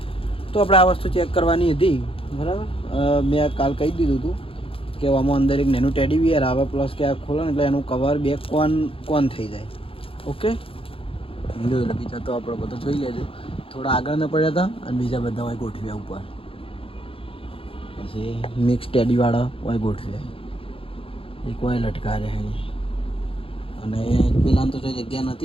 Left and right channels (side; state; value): right; late; 0.27 ms